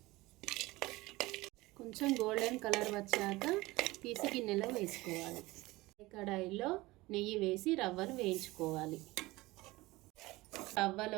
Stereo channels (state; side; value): quieter; left; 20.4 dB